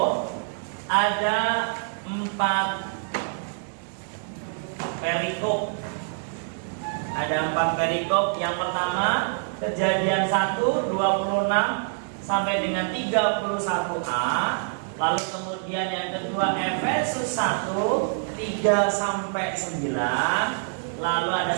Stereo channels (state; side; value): silent; left; digital silence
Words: ada 4 perikop. Ada 4 perikop. Yang pertama, Kejadian 1 26 sampai dengan 31a. Lalu kemudian yang kedua Efesus 1 3 sampai 9. Lalu ada